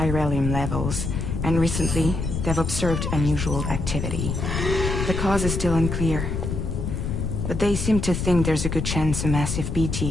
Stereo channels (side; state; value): left; noise; rumble, 2 dB below the sound